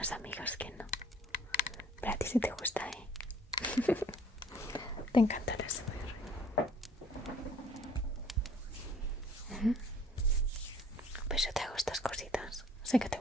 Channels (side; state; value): both; normal; correlation 0.55